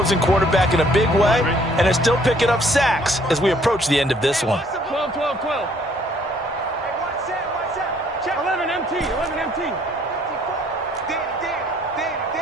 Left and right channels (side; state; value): both; normal; correlation 0.62